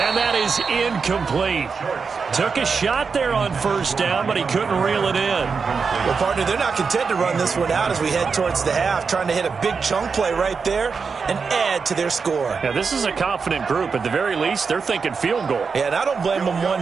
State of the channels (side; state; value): left; quieter; 5.3 dB